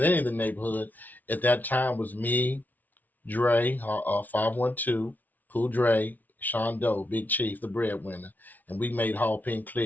the neighborhood at that time was me, Dre, 512, Cool Dre, Sean Doe, Big Chief, the breadwinner, and we made Hall Pen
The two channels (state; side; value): late; right; 0.080 ms